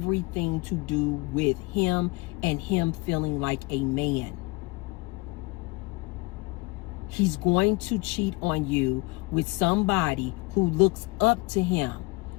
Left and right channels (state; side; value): quieter; right; 24.4 dB